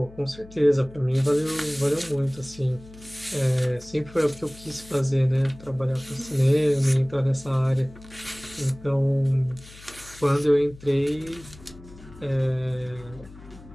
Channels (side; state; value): left; noise; hum, 20 dB below the sound